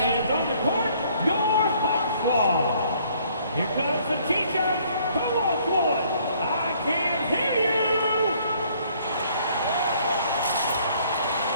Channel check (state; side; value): inverted; both; correlation -0.62